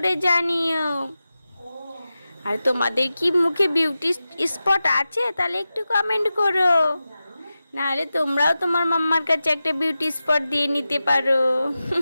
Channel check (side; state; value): both; inverted; correlation -0.93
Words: জানিও। আর তোমাদের কি মুখে বিউটি স্পট আছে? তাহলে একটু কমেন্ট করো, নাহলে তোমরাও তোমার মাম্মার কাছে একটা বিউটি স্পট দিয়ে নিতে পারো।